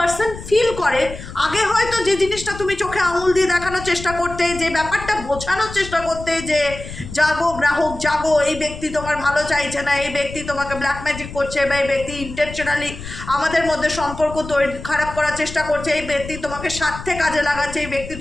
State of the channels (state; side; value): noise; left; rumble, 12 dB below the sound